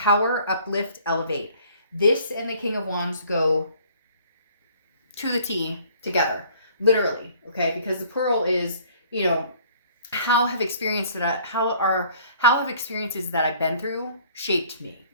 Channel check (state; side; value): inverted; both; correlation -0.56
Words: uplift, elevate. This and the King of Wands go to the T together, literally, okay? Because the Pearl is, how have experiences that I've been through shaped me,